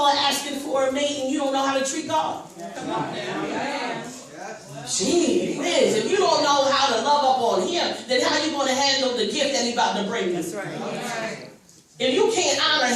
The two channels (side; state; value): both; identical; correlation 1.00